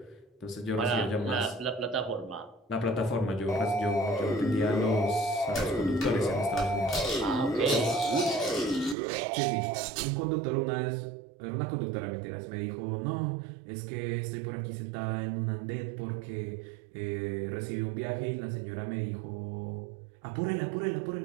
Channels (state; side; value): drops out; left; at 9.0 s